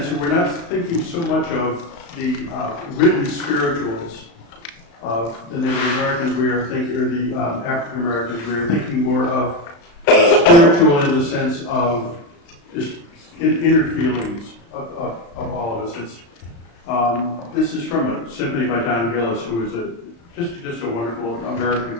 we're not thinking so much of the written spirituals of the Native Americans, we are thinking, or the African Americans, we are thinking more of spiritual in the sense of just inner feelings of all of us. This is from a symphony by Gillis, who is just a wonderful American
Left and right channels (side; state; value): right; late; 35 ms